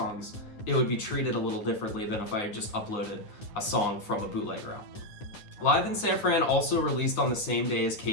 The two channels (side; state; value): right; late; 9.8 ms